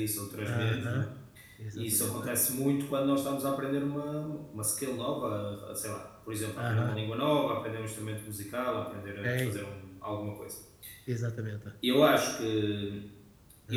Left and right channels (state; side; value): identical; both; correlation 1.00